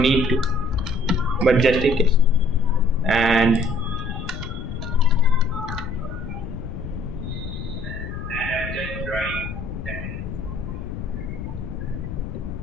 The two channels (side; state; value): left; noise; rumble, 7 dB below the sound